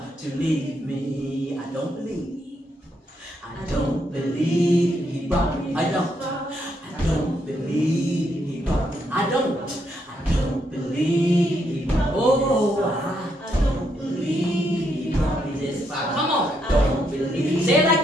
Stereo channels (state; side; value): normal; both; correlation 0.77